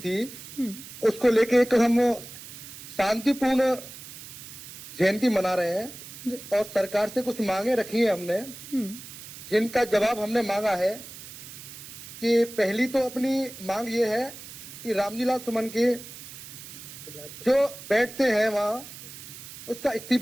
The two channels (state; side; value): noise; right; hiss, 14 dB below the sound